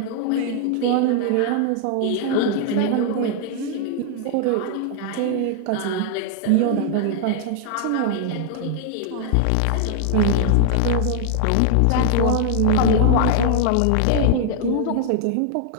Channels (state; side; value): different; both; correlation 0.00